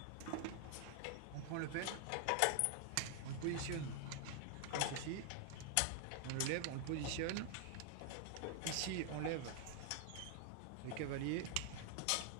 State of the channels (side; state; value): both; different; correlation 0.00